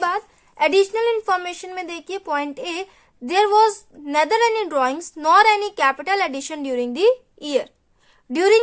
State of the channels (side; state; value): both; identical; correlation 1.00